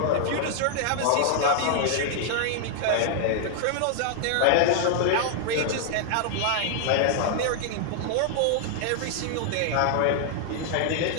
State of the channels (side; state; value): both; different; correlation 0.00